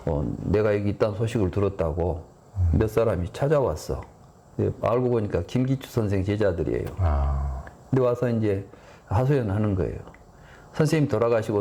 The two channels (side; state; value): both; identical; correlation 1.00